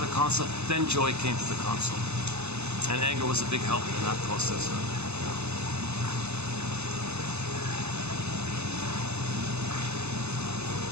console, then joy came to the console. And anger was a big help in that process.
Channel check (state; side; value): late; left; 0.81 ms